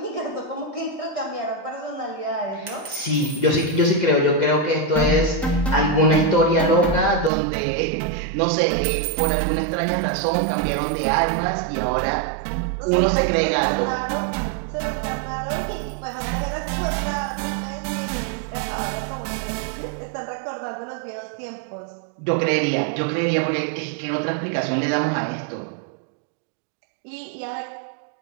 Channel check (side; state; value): left; drops out; at 7.3 s